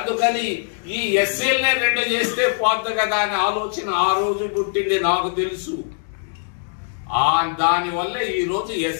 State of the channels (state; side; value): silent; right; digital silence